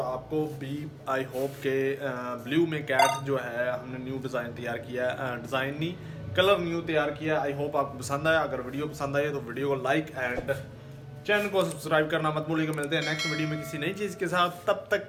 भी आई होप के ब्लू में कैट जो है हमने न्यू डिज़ाइन तैयार किया है, डिज़ाइन नहीं कलर न्यू तैयार किया है। आई होप आपको पसंद आया। अगर वीडियो पसंद आई तो वीडियो को लाइक एंड चैनल को सब्सक्राइब करना मत भूलिएगा। मिलते हैं नेक्स्ट वीडियो में किसी नई चीज़ के साथ, तब तक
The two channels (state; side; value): identical; both; correlation 1.00